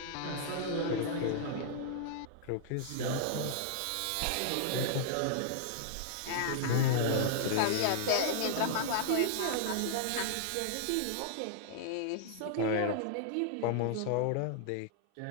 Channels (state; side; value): different; both; correlation -0.01